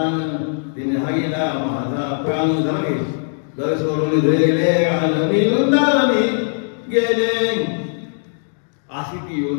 तिने हागीला माझा प्राण झाले घर सोडून जाईले रान मी वृंदावनी गेले. अशी ती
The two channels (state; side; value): silent; right; digital silence